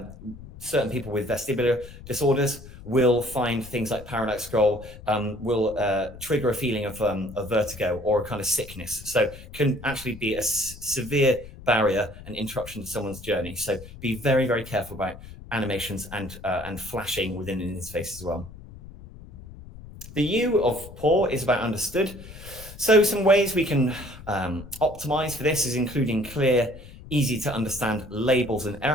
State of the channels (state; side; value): noise; left; rumble, 16 dB below the sound